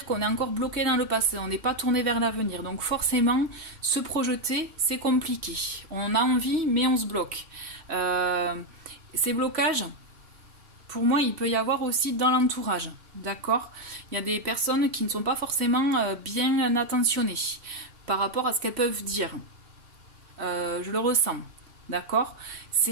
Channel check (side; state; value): left; late; 2.8 ms